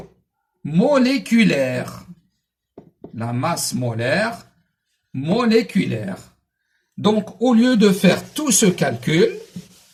moléculaire. La masse molaire moléculaire. Donc, au lieu de faire tout ce calcul,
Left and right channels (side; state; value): both; identical; correlation 1.00